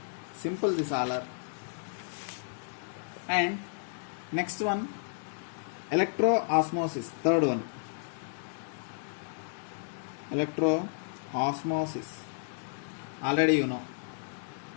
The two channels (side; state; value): right; silent; digital silence